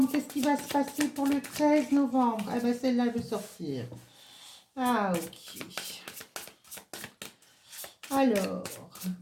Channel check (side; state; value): both; identical; correlation 1.00